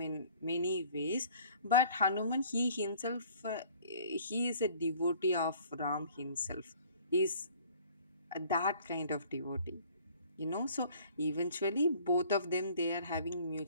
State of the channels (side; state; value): both; inverted; correlation -0.53